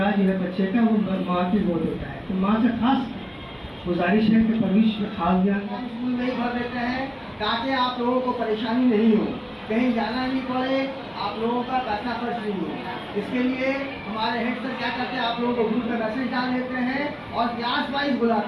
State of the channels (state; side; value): identical; both; correlation 1.00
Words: जो है बच्चे का, वो माँ की गोद होता है। तो माँ से खास गुजारिश है कि परवरिश में खास ध्यान स्कूल में ही भर देते हैं ताकि आप लोगों को परेशानी नहीं हो, कहीं जाना नहीं पड़े, आप लोगों का पैसा खर्च नहीं हो। इसके लिए हमारे हेड सर क्या करते हैं, आप लोगों को ग्रुप में मैसेज डाल देते हैं और क्लास वाइज